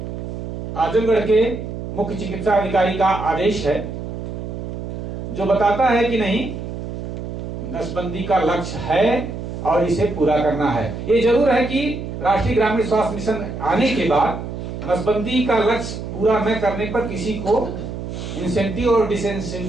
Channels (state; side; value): noise; right; hum, 7 dB below the sound